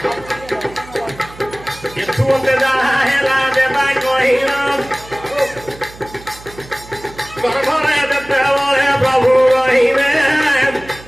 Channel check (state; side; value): noise; right; hum, 19 dB below the sound